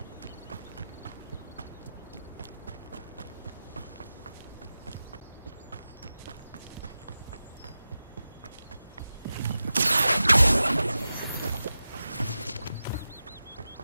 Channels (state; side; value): inverted; both; correlation -0.93